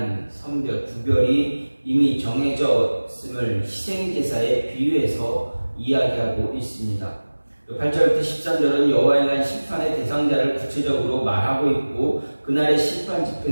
선별, 구별이 이미 정해졌음을 희생제사에 비유해서 이야기하고 있습니다. 8절부터 13절은 여호와의 날 심판의 대상자를 구체적으로 말하고 있고 그날의 심판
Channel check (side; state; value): both; inverted; correlation -1.00